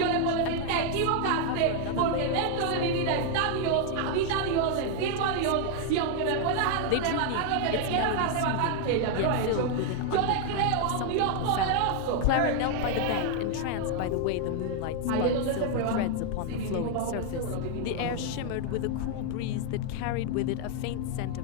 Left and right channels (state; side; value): different; both; correlation 0.00